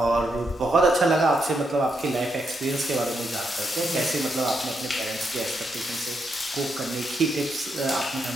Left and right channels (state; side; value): normal; both; correlation 0.80